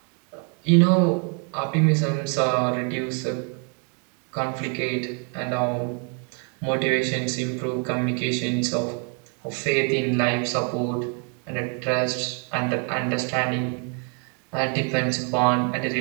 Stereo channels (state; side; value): quieter; left; 39.5 dB